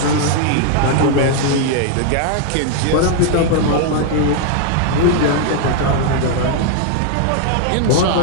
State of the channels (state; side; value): different; both; correlation 0.00